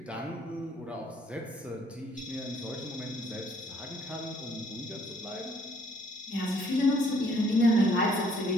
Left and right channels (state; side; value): normal; both; correlation 0.64